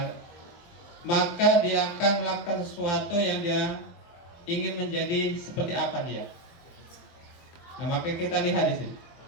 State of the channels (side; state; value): right; late; 24 ms